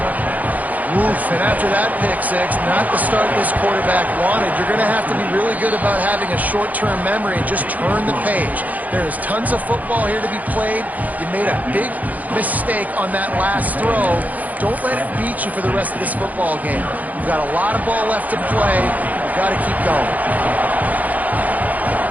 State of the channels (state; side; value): late; left; 0.079 ms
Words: Oof, and after that pick six, not the start this quarterback wanted. You're going to have to be really good about having a short-term memory and just turn the page. There is tons of football here to be played. You made a big mistake on that last throw. Don't let it beat you for the rest of this football game. You've got a lot of ball left to play. You've got to keep going.